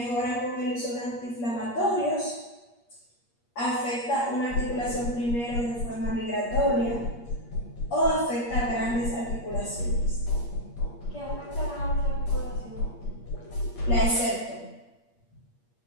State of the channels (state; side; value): late; right; 8.5 ms